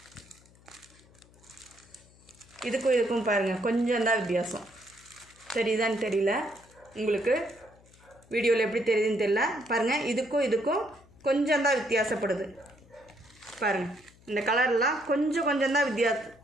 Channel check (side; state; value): left; noise; hum, 27 dB below the sound